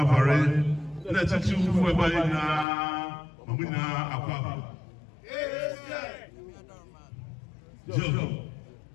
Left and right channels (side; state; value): right; drops out; at 2.7 s